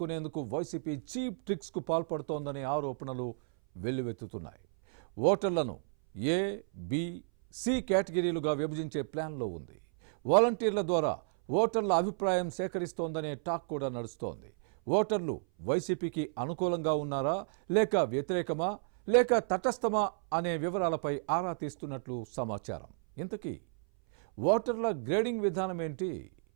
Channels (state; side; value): silent; left; 56 dB below the other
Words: YCP cheap tricks కు పాల్పడుతోందనే ఆరోపణలు వెల్లువెత్తుతున్నాయి. ఓటర్లను ఏ, బి, సి కేటగిరీలుగా విభజించే ప్లాన్లో ఉంది. వాలంటీర్ల ద్వారా ఓటర్ల అభిప్రాయం సేకరిస్తోందనే టాక్ కూడా నడుస్తోంది. ఓటర్లు వైసీపీకి అనుకూలంగా ఉన్నారా, లేక వ్యతిరేకమా, లేక తటస్థమా అనే వివరాలపై ఆరా తీస్తున్నట్లు సమాచారం. ఇంతకీ ఓటర్ల గ్రేడింగ్ విధానం ఏంటి?